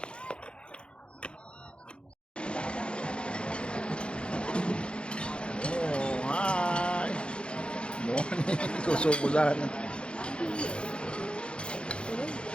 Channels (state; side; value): late; right; 0.056 ms